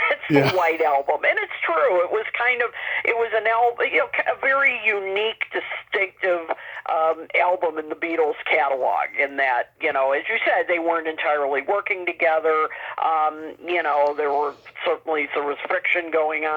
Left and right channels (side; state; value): both; identical; correlation 1.00